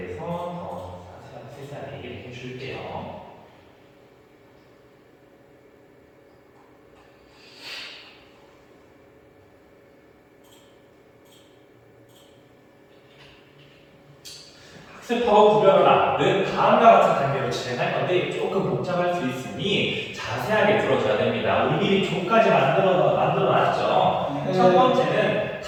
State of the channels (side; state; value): both; identical; correlation 1.00